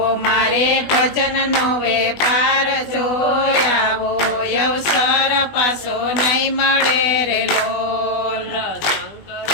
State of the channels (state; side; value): late; right; 20 ms